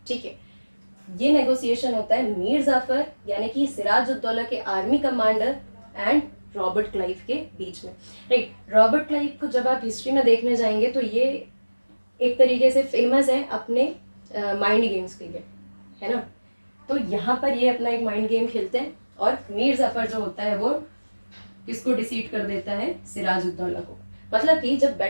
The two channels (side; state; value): both; inverted; correlation -1.00